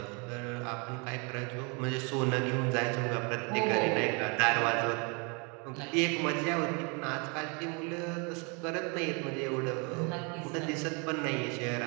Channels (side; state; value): left; quieter; 33.0 dB